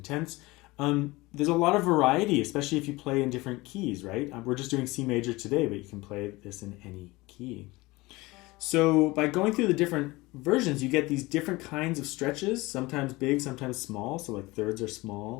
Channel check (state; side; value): quieter; right; 21.6 dB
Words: tenths, there's a lot of variety, especially if you play in different keys, right? We're just doing C major today, but you can play this in any key. So by going through the different versions, you get these different kinds of stretches, sometimes big, sometimes small. So like thirds are